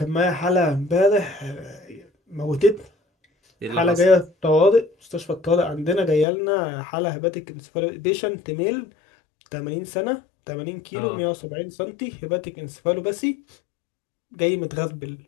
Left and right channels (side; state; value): right; drops out; at 6.2 s